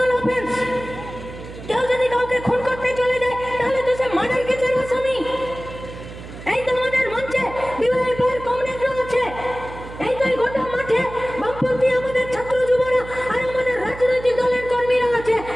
অফেন্স। কেউ যদি কাউকে খুন করতে চলে যায়, তাহলে তো সে মার্ডার কেসের আসামি। এই তো আমাদের মঞ্চে বিবাহের কমরেডরা আছে, এই তো গোটা মাঠে বামপন্থী আমাদের ছাত্র যুবরা আর আমাদের রাজনৈতিক দলের কর্মীরা আছে।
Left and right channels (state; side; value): noise; right; hum, 13 dB below the sound